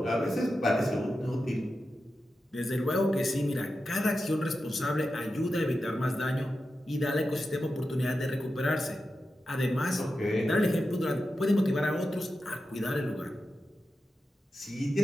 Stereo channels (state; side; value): normal; both; correlation 0.91